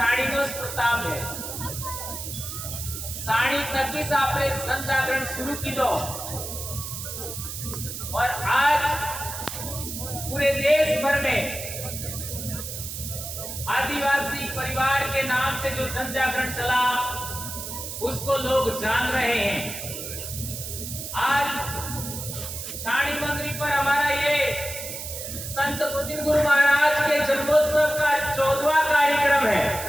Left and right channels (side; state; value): right; noise; hiss, 7 dB below the sound